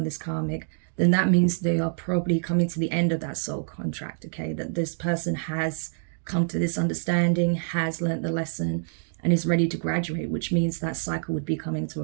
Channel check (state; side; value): silent; left; digital silence